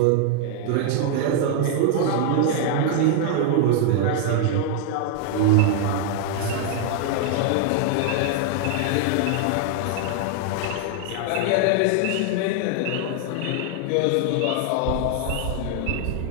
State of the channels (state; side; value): different; both; correlation 0.00